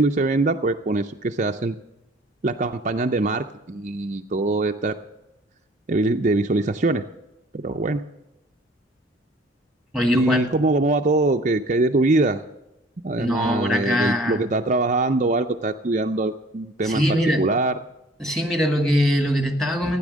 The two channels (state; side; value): normal; both; correlation 0.51